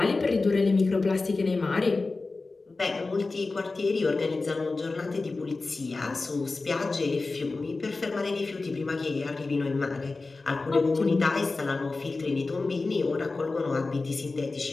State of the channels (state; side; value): quieter; right; 3.6 dB